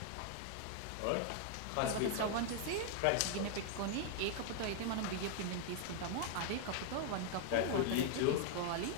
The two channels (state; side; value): different; both; correlation 0.00